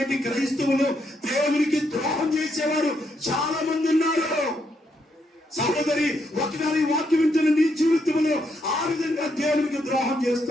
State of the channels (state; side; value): normal; both; correlation 0.77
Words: క్రైస్తవులు దేవునికి ద్రోహం చేసేవారు చాలా మంది ఉన్నారు. సహోదరి, ఒకసారి వాక్యం వింటున్న నీ జీవితంలో ఆ విధంగా దేవునికి ద్రోహం